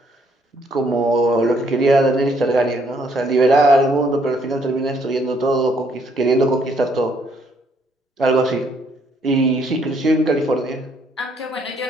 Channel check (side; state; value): both; normal; correlation 0.68